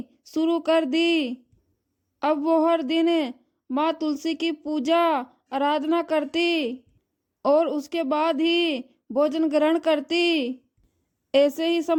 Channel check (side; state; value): both; identical; correlation 1.00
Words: शुरू कर दी। अब वो हर दिन माँ तुलसी की पूजा आराधना करती और उसके बाद ही भोजन ग्रहण करती। ऐसे ही